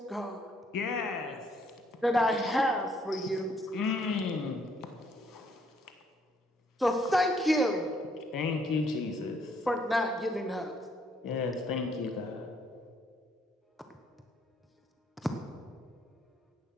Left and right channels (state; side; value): normal; both; correlation 0.68